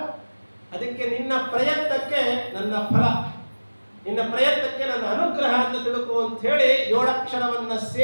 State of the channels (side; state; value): both; inverted; correlation -1.00